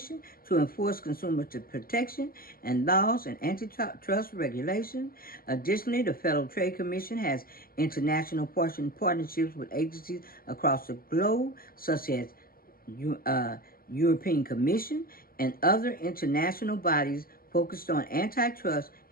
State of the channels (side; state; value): right; late; 0.42 ms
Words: to enforce consumer protection and laws and antitrust regulation. Additionally, the Federal Trade Commission has international partnerships with agencies across the globe, such as European Commission and other international bodies focused on antitrust